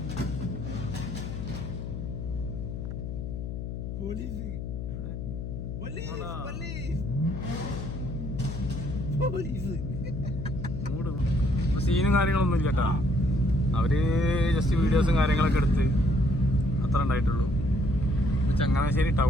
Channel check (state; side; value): noise; left; hum, 6 dB below the sound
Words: സീനും കാര്യങ്ങളൊന്നും ഇല്ല കേട്ടോ. അവര് ജസ്റ്റ് വീഡിയോസും കാര്യങ്ങളൊക്കെ എടുത്ത് അത്ര ഉണ്ടായിട്ടുള്ളൂ. ചങ്ങനാശ്ശേരി